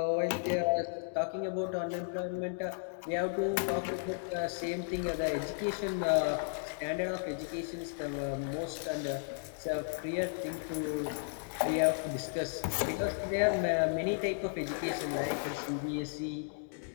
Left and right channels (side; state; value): right; silent; digital silence